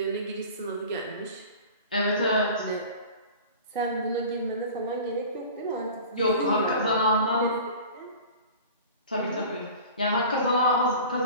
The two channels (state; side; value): inverted; both; correlation -0.40